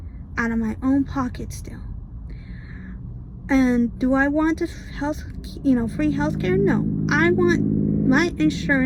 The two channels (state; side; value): identical; both; correlation 1.00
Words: out of my own pocket still. And do I want free healthcare? No. I want my